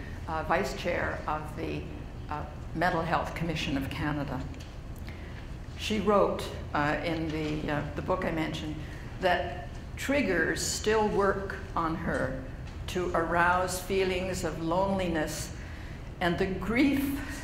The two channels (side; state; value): both; identical; correlation 1.00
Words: vice chair of the Mental Health Commission of Canada. She wrote in the book I mentioned that triggers still work on her to arouse feelings of loneliness and the grief